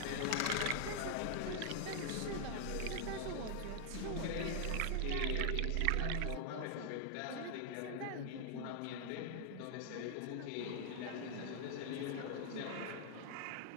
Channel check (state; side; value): different; both; correlation 0.00